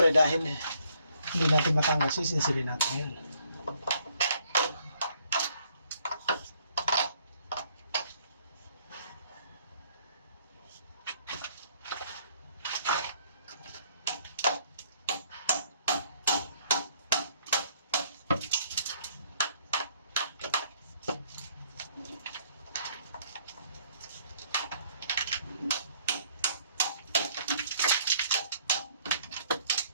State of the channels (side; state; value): both; inverted; correlation -0.65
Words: dahil hindi natin matanggal, sisinsilin natin ngayon.